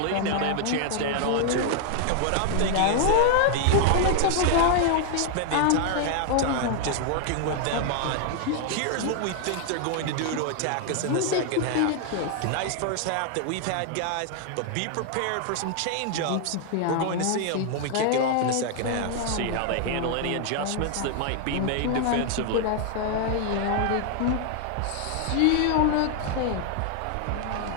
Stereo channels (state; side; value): different; both; correlation 0.00